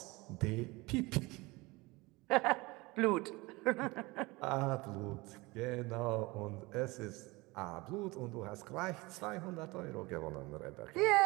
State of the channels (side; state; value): left; quieter; 23.2 dB